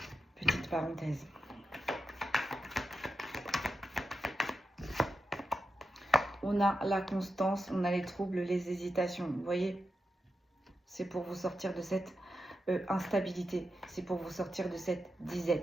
Petite parenthèse. On a la constance, on a les troubles, les hésitations. Vous voyez, c'est pour vous sortir de cette instabilité. C'est pour vous sortir de cette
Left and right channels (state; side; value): normal; both; correlation 0.88